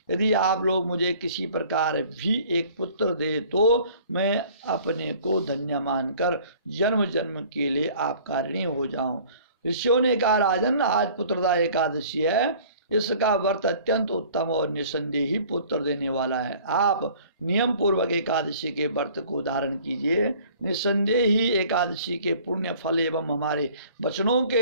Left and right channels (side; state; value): both; inverted; correlation -0.51